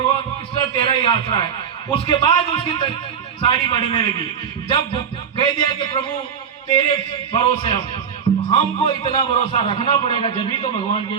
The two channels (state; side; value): quieter; left; 7.4 dB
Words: कृष्ण तेरा ही आसरा है। उसके बाद उसकी साड़ी बढ़ने लगी। जब कह दिया कि प्रभु तेरे भरोसे हमको इतना भरोसा रखना पड़ेगा, जब तो भगवान की